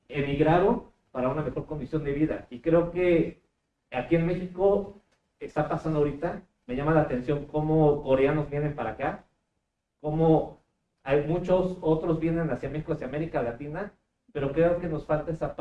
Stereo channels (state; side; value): identical; both; correlation 1.00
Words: emigraron para una mejor condición de vida. Y creo que aquí en México está pasando ahorita, me llama la atención cómo coreanos vienen para acá, cómo hay muchos otros vienen hacia México, hacia América Latina, pero creo que nos falta esa